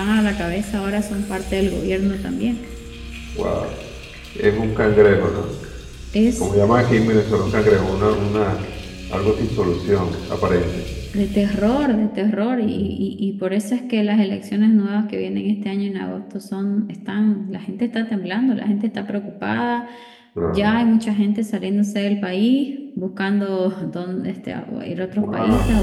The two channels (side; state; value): both; identical; correlation 1.00